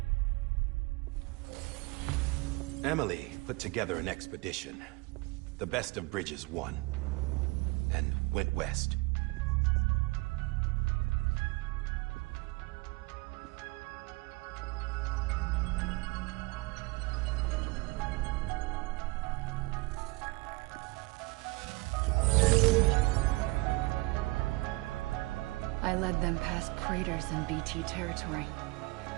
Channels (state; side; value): quieter; left; 23.8 dB